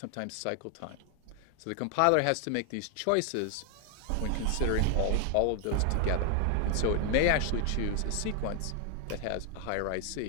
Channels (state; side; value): different; both; correlation 0.00